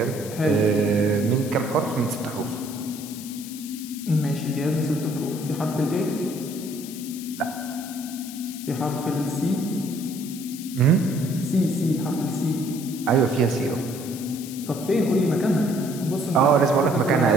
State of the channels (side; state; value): left; noise; hiss, 13 dB below the sound